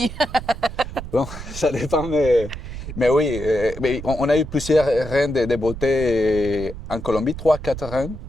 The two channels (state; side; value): noise; right; rumble, 10 dB below the sound